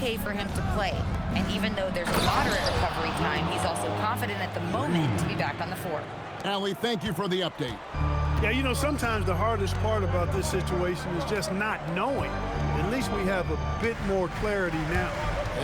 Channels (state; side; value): identical; both; correlation 1.00